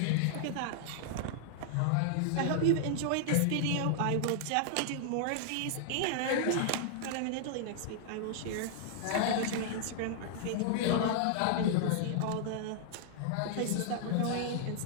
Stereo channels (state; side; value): different; both; correlation -0.01